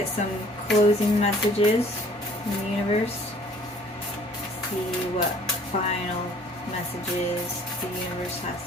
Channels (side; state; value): both; normal; correlation 0.55